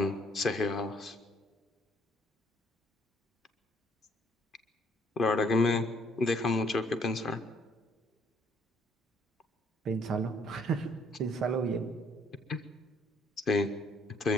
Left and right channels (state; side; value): normal; both; correlation 0.64